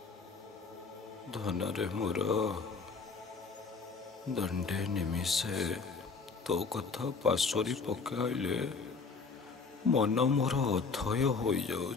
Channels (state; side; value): quieter; right; 4.7 dB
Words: ଧନରେ ମୋର ଦଣ୍ଡେ ନିମିଷେ ତୋ କଥା ପାଶୋରି ପକାଇଲେ ମନ ମୋର ଅଥୟ